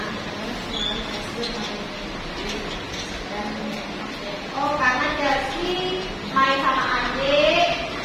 Oh, karena Chelsea main sama adik,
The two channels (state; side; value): identical; both; correlation 1.00